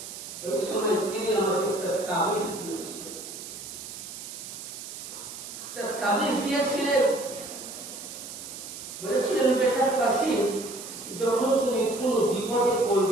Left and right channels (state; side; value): noise; right; hiss, 11 dB below the sound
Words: ওই সময় তিনি আমাকে একটা তাবিজ দিয়েছিলেন। তাবিজ দিয়েছিলেন, বলেছিলেন, বেটা কাসিম, যখন তুমি কোন বিপদে